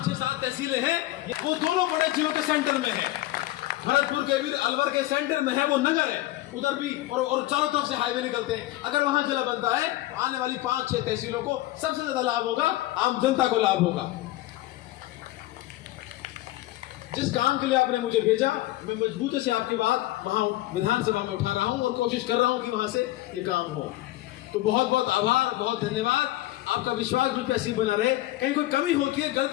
6, 7 तहसीलें हैं, वो दोनों बड़े जिलों के सेंटर में है। भरतपुर के भी अलवर के सेंटर में है वो नगर है, उधर भी और चारों तरफ से हाईवे निकलते हैं। अगर वहां जिला बनता है, आने वाली 5, 6 तहसीलों को सबसे ज्यादा लाभ होगा, आम जनता को लाभ होगा। जिस काम के लिए आपने मुझे भेजा, मैं मजबूती से आपकी बात वहां विधानसभा में उठा रहा हूं और कोशिश कर रहा हूं कि वहां से ये काम हो। तो बहुत बहुत आभार, बहुत धन्यवाद। आपका विश्वास मुझ पे ऐसी बना रहे। कहीं कोई कमी होती है,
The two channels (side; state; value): right; quieter; 16.7 dB